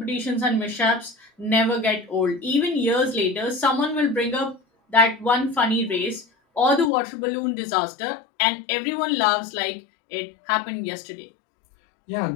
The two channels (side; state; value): right; drops out; at 6.9 s